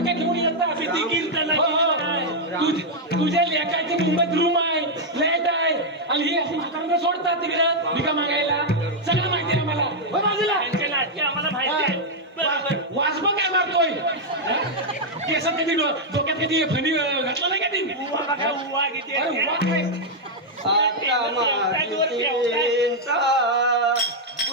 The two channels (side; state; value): both; normal; correlation -0.02